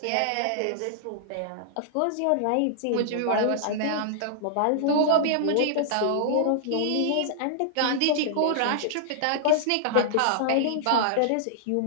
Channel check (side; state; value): both; different; correlation -0.01